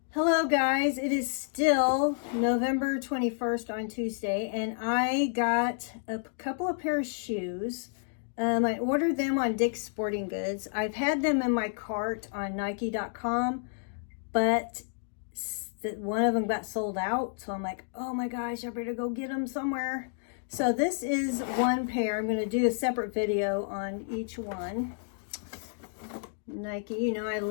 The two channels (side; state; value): right; silent; digital silence